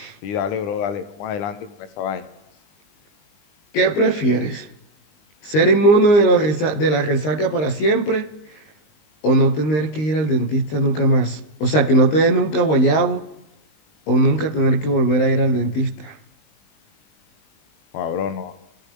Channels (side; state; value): right; late; 20 ms